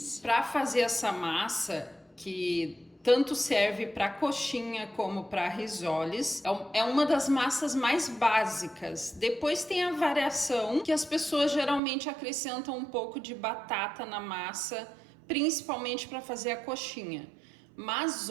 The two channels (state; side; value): drops out; left; at 11.8 s